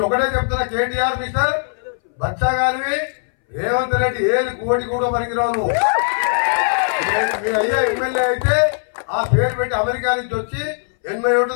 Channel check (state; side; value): silent; right; 63 dB below the other